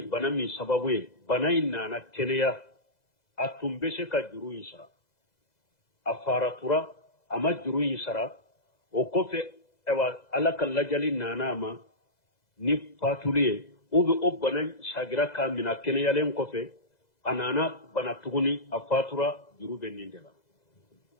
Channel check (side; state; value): right; late; 2.0 ms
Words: bana min sababu ye bana in nana keleya atumbese ka juru insara afaratura ama juru insara o kofe ewa alaka lajali nana ama ni fatuliye o be o bana shagira ka mina keleya len kofe anana bana tuguni afatura juru be nindela